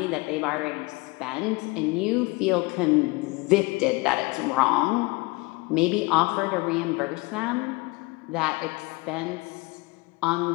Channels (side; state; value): right; quieter; 25.1 dB